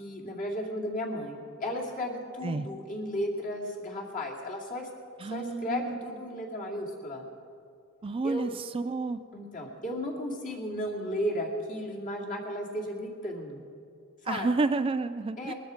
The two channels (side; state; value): both; normal; correlation 0.50